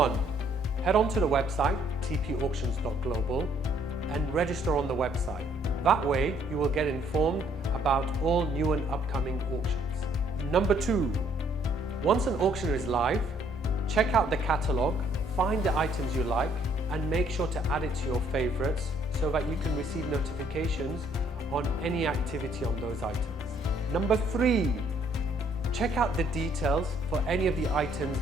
head on to the website tpauctions.global and register on the website. That way you will get informed about all new and upcoming auctions. Number 2, once an auction is live, check out the catalogue, find the items you like and make sure to add it to your favorites so that you can receive notifications on any activity on those items. Number 3, check out the details for any of the items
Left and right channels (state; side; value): normal; both; correlation 0.65